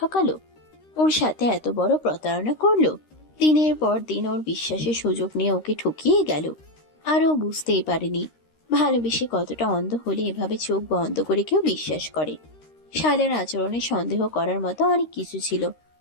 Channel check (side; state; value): right; late; 13 ms